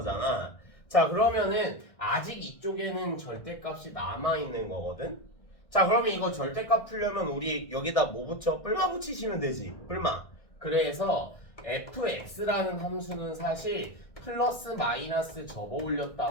자, 그러면은 아직 이쪽에는 절대값이 남아있는 거거든. 자, 그러면 이거 절대값 풀려면 우리 여기다 뭐 붙여? 뿔마 붙이시면 되지. 뿔마. 그래서 fx라는 함수는 사실 플러스 마이너스 접어 올렸다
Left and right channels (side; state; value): right; late; 1.6 ms